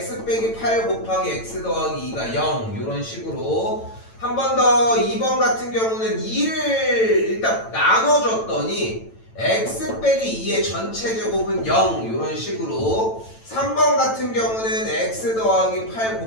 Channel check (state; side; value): late; right; 9.0 ms